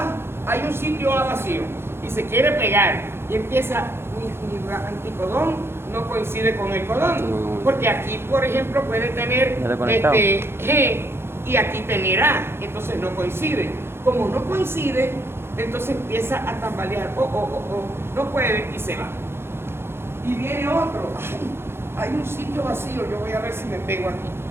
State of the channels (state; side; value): late; left; 0.12 ms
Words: hay un sitio A vacío, y se quiere pegar, y empieza, mi anticodón no coincide con el codón, porque aquí, por ejemplo, puede tener G y aquí tener A, entonces no coincide. Como no coincide, entonces empieza a tambalear, no puede y se va. Y viene otro, hay un sitio vacío, yo voy a ver si me pego